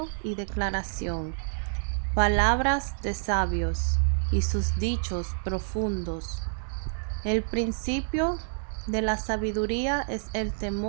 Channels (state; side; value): silent; left; digital silence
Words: y declaración, palabras de sabios y sus dichos profundos. El principio de la sabiduría es el